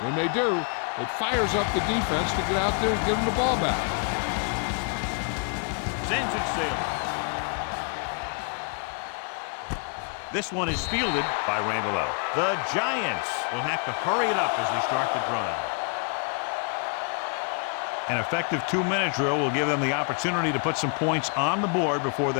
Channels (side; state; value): right; quieter; 39.3 dB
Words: they do, it fires up the defense to get out there and get them the ball back. Sends it sailing. This one is fielded by Randall L. The Giants will have to hurry it up as they start the drive. An effective 2-minute drill will give them the opportunity to put some points on the board before